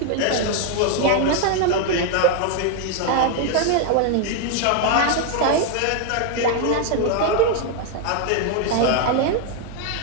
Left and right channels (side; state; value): both; different; correlation 0.00